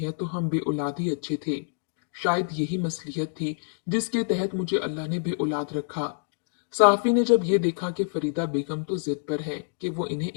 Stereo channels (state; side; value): silent; right; digital silence